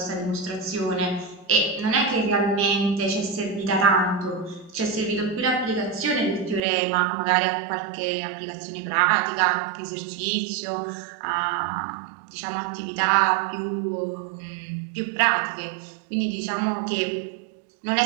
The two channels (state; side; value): drops out; left; at 6.6 s